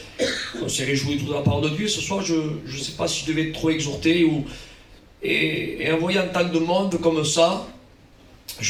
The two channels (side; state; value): both; identical; correlation 1.00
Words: On s'est réjoui de la parole de Dieu. Ce soir je ne sais pas si je devais trop exhorter et en voyant tant de monde comme ça,